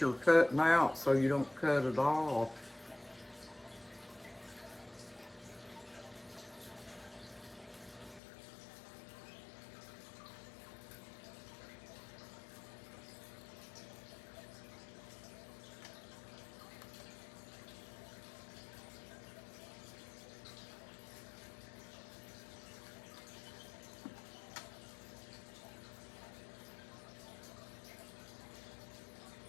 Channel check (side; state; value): right; drops out; at 8.2 s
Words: cutting out so you don't cut it off.